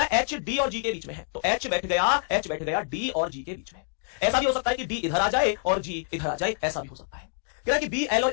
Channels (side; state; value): right; silent; digital silence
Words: है एच डी और जी के बीच में है, तो एच बैठ गया डी और जी के बीच में। ऐसा भी हो सकता है कि डी इधर आ जाए और जी इधर आ जाए, ऐसा भी हो सकता है। कह रहा है कि बी एल